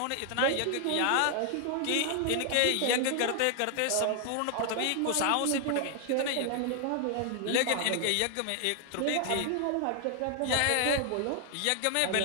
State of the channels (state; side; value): different; both; correlation 0.00